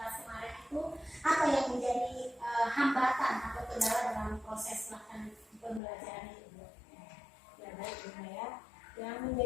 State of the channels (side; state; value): right; drops out; at 5.8 s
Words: kemarin itu apa yang menjadi hambatan atau kendala dalam proses pelaksanaan pembelajaran itu Bu? Ya baik, Rima ya. Yang